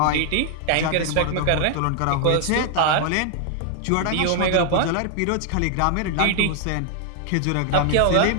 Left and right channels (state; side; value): different; both; correlation 0.00